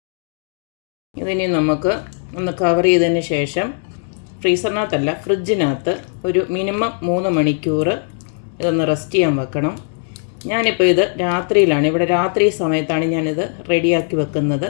ഇതിനി നമുക്ക് ഒന്ന് കവർ ചെയ്തതിന് ശേഷം ഫ്രീസറിനകത്തല്ല ഫ്രിഡ്ജിനകത്ത് ഒരു മിനിമം 3 മണിക്കൂർ ഇതൊന്ന് റെസ്റ്റ് ചെയ്യാൻ വെക്കണം. ഞാനിപ്പോൾ ഇത് രാത്രിയിലാണ്, ഇവിടെ രാത്രി സമയത്താണ് ഞാനിത് റെഡിയാക്കി വെക്കുന്നത്.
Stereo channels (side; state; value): right; silent; 62 dB below the other